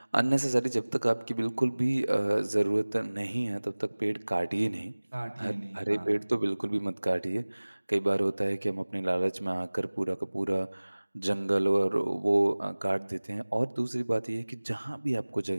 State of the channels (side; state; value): both; inverted; correlation -1.00